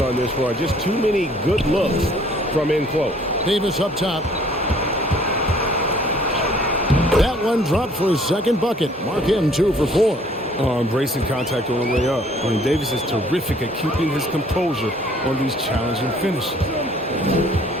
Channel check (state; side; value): normal; both; correlation 0.58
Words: on this run. Just too many good looks from in close. Davis up top. That one dropped for his second bucket. Mark him 2 for 4. Embracing contact on the way up. I mean, Davis is terrific at keeping his composure on these challenging finishes.